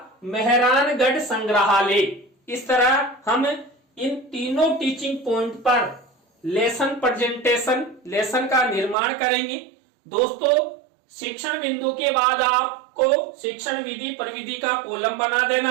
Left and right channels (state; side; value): drops out; left; at 9.0 s